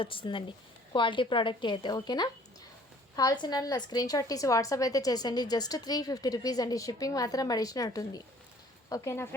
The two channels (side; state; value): both; normal; correlation 0.55